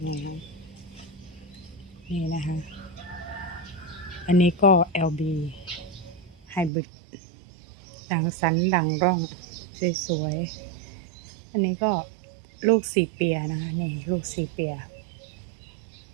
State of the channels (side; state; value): left; drops out; at 6.7 s